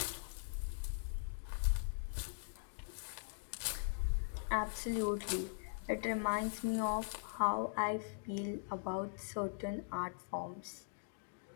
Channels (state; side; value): silent; right; digital silence